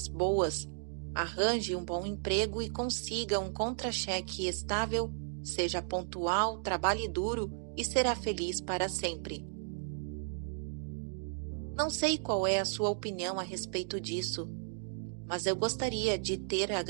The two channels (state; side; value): silent; left; digital silence